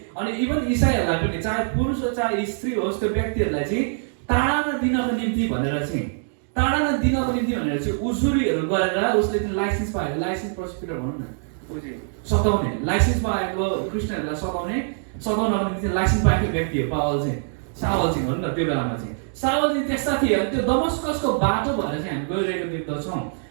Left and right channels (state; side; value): silent; left; digital silence